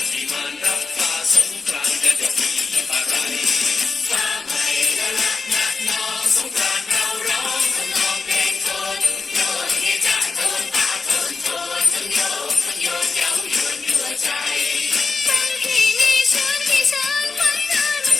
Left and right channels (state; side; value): quieter; right; 4.4 dB